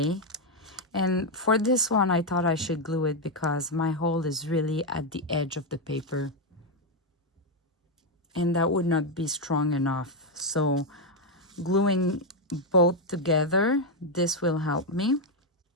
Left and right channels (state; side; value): normal; both; correlation 0.03